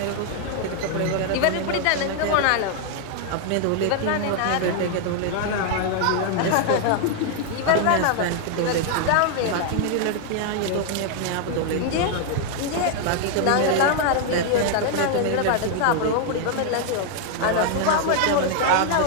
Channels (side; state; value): both; different; correlation 0.00